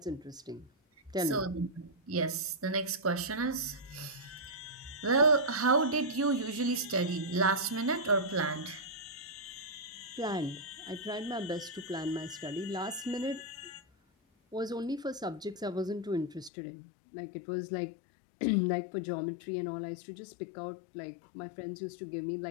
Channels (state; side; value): drops out; right; at 16.5 s